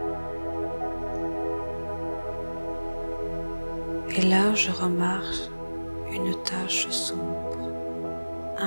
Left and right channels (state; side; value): inverted; both; correlation -1.00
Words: Et là, je remarque une tache sombre,